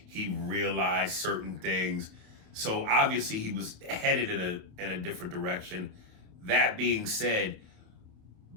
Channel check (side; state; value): left; late; 28 ms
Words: He realized certain things. So obviously he was headed in a different direction. That being said,